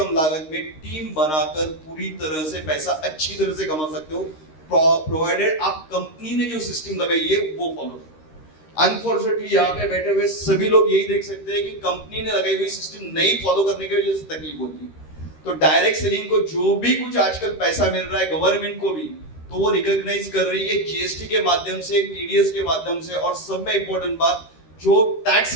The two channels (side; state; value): right; late; 13 ms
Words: लागत में टीम बनाकर पूरी तरह से पैसा अच्छी तरह से कमा सकते हो, प्रोवाइडेड आप कंपनी ने जो सिस्टम लगाई है वो फॉलो करो। अनफॉर्चुनेटली यहाँ पे बैठे हुए सभी लोग यही देख सकते हैं कि कंपनी ने लगाई हुई सिस्टम नहीं फॉलो करने की वजह से तकलीफ होती है। तो डायरेक्ट सेलिंग को जो भी कुछ आजकल पैसा मिल रहा है गवर्नमेंट को भी, तो वो रिकॉग्नाइज कर रही है जीएसटी के माध्यम से, टीडीएस के माध्यम से, और सब में इंपॉर्टेंट बात जो टैक्स